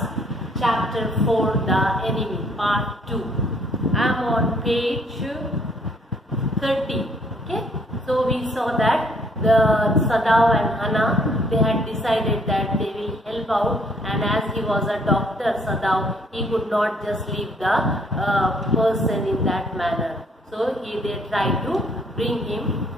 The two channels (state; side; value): normal; both; correlation 0.64